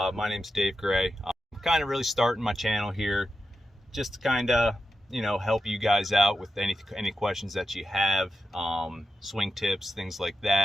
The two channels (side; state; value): both; normal; correlation 0.89